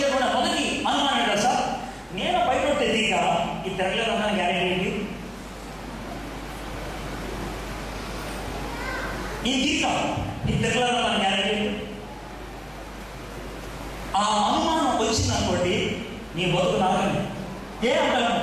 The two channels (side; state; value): both; identical; correlation 1.00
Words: మొదటి అనుమానం ఏంటి తెలుసా? నేను బయట తెలియక ఈ తెరలేదన్న గ్యారెంటీ ఏంటి? ఈ తీకా ఈ తెరలేదన్న గ్యారెంటీ ఏంటి? ఆ అనుమానం వచ్చిందనుకోండి, నీ బతుకు నాకని ఏ అంటాను?